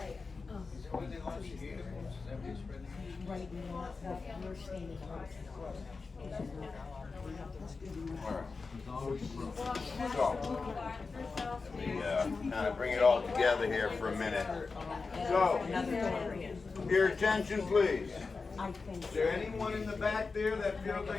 Right. Right now, we're standing on. Let me kind of bring it all together here for a minute. So, your attention please. Is there anyone in the back there that feels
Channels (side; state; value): right; quieter; 4.3 dB